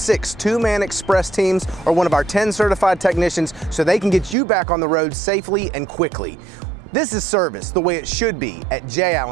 two-man express teams or one of our 10 certified technicians so they can get you back on the road safely and quickly. This is service the way it should be at J.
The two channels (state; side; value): drops out; left; at 4.4 s